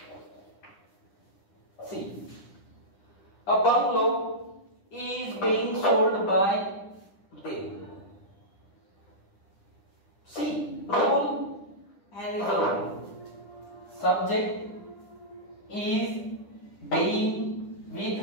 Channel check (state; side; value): late; right; 10 ms